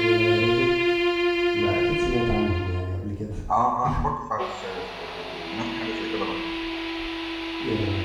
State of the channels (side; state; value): both; identical; correlation 1.00